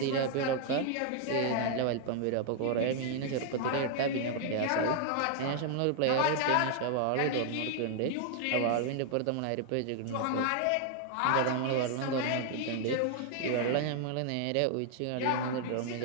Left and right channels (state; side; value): different; both; correlation 0.00